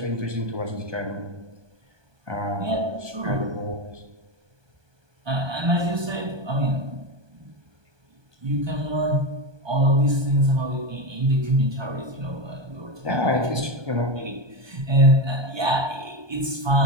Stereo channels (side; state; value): left; late; 1.2 ms